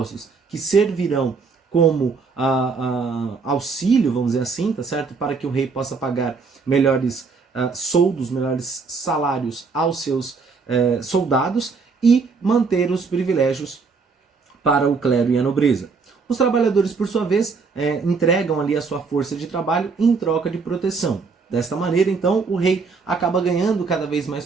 que servirão como auxílio, vamos dizer assim, tá certo? Para que o rei possa pagar melhores soldos, melhores salários aos seus soldados e manter os privilégios para o clero e a nobreza. Os trabalhadores, por sua vez, entregam ali a sua força de trabalho em troca de proteção. Desta maneira, então, o rei acaba ganhando cada vez mais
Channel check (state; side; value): quieter; left; 4.8 dB